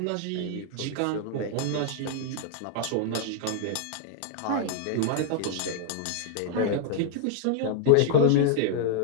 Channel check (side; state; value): both; different; correlation -0.01